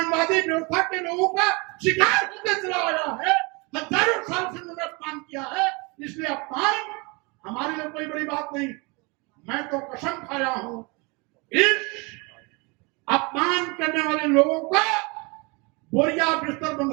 व्यवस्था के लोगों का शिकार होते चला आया है। हजारों साल से मैंने अपमान किया है, इसलिए अपमान हमारे लिए कोई बड़ी बात नहीं। मैं तो कसम खाया हूं इस अपमान करने वाले लोगों का बोरिया बिस्तर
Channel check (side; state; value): left; quieter; 28.8 dB